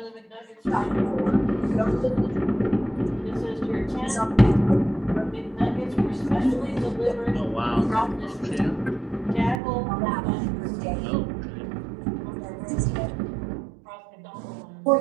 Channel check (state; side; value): drops out; left; at 9.6 s